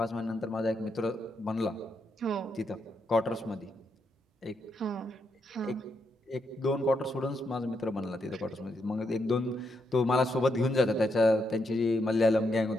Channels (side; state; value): both; normal; correlation 0.80